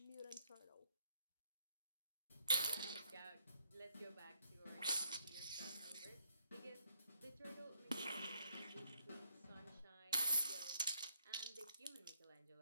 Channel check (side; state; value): both; inverted; correlation -0.71